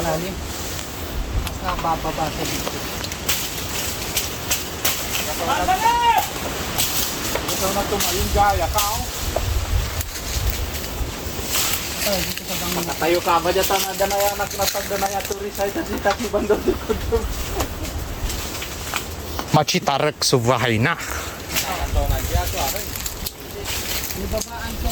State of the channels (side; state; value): both; identical; correlation 1.00